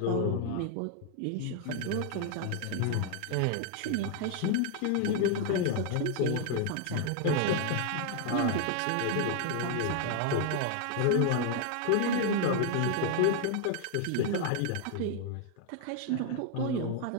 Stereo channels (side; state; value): both; different; correlation 0.00